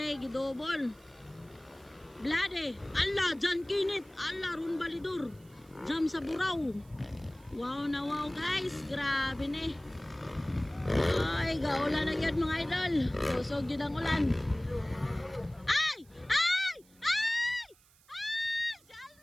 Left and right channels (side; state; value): right; noise; hiss, 29 dB below the sound